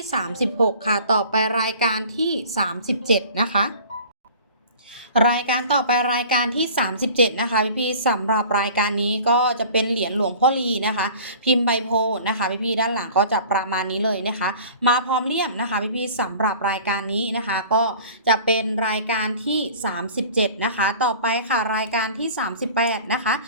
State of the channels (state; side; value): inverted; both; correlation -0.44